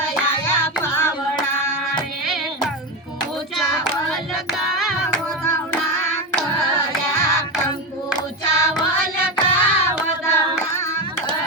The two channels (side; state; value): both; normal; correlation 0.15